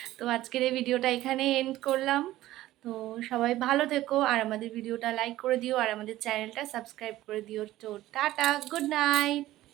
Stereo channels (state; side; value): quieter; left; 15.4 dB